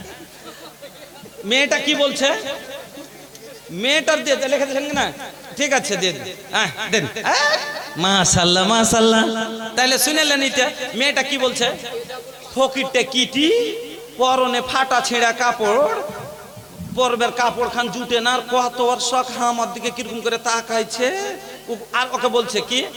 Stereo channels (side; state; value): both; identical; correlation 1.00